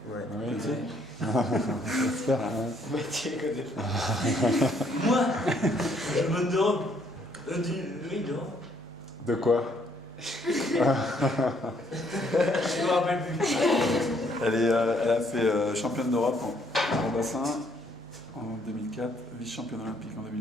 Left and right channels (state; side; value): normal; both; correlation 0.67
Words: Ouais. Oui. J'espère. Mathieu connaît pas. Moi, je me demande. Oui, non. De quoi? Je me rappelle plus. Elle a fait championne d'Europe en bassin en 2004, vice-championne olympique en